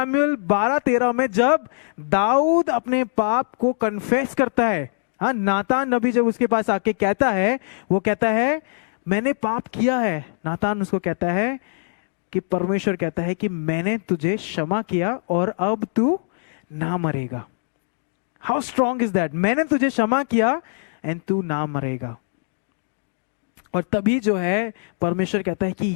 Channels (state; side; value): silent; right; digital silence